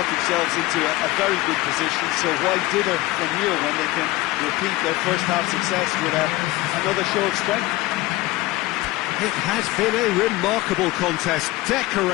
themselves into a very good position, so why dither from here when they can repeat their first half success with another show of strength? It has been a remarkable contest,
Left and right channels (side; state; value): right; quieter; 18.5 dB